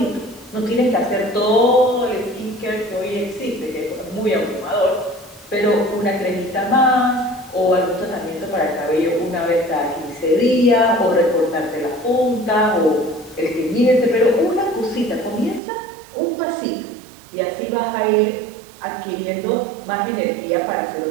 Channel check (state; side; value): drops out; left; at 15.6 s